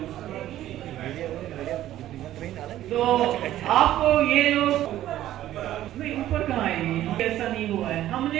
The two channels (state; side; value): quieter; left; 13.3 dB